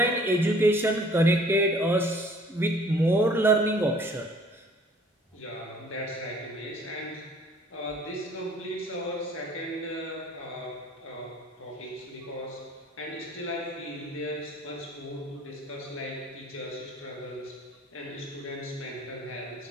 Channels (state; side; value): normal; both; correlation 0.54